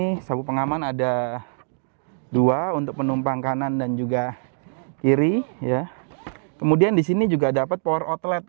sabuk pengaman ada 2 untuk penumpang kanan dan juga kiri ya. Kemudian di sini juga dapat power outlet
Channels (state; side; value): silent; left; digital silence